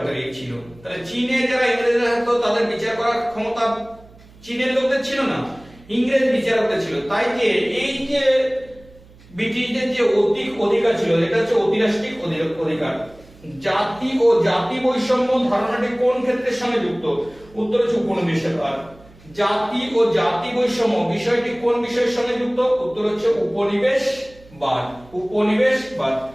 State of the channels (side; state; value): right; noise; hum, 24 dB below the sound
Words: ছিল। তাহলে চীনে যারা ইংরেজরা থাকতো তাদের বিচার করার ক্ষমতা চীনের লোকদের ছিল না ইংরেজ বিচারকদের ছিল। তাই যে এই যে ব্রিটিশদের যে অধিকার ছিল এটা হচ্ছে অতিরাষ্ট্রিক অধিকার। জাতি ও জাতি বৈষম্য ধারণাটি কোন ক্ষেত্রের সঙ্গে যুক্ত উত্তর হচ্ছে উপনিবেশবাদ। জাতি ও জাতি বৈষম্য বিষয়টি কোন বিষয়ের সঙ্গে যুক্ত উত্তর হচ্ছে উপনিবেশবাদ।